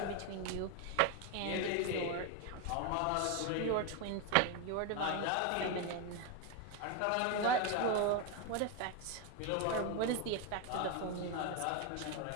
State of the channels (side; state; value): both; different; correlation 0.02